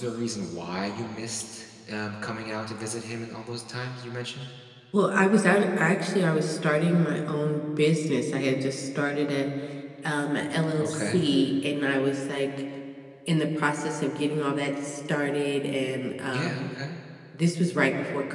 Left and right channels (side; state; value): both; identical; correlation 1.00